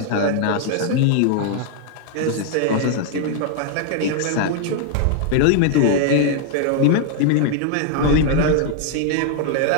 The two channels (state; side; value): different; both; correlation 0.00